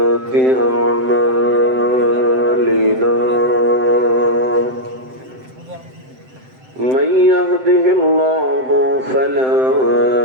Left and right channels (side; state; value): left; late; 7.7 ms